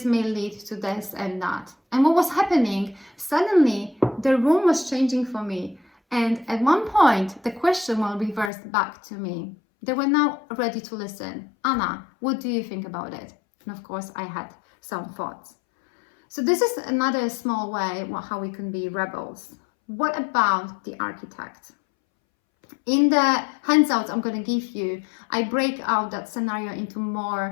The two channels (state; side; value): drops out; right; at 8.5 s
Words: may lead to this and that? And what was happening? Suddenly, the room was changing for me. And at one point, the question was reversed back to me. They were now ready to listen. Anna, what do you think about it? And of course, I had some thoughts. So this is another small way how we can be rebels. What about the architect? In the handouts I'm going to give you, I break out that scenario into